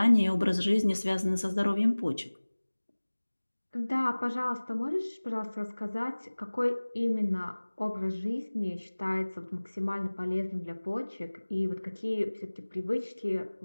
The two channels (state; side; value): inverted; both; correlation -1.00